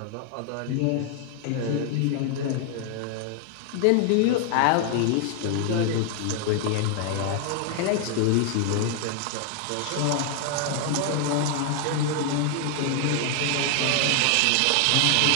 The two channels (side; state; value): both; different; correlation 0.00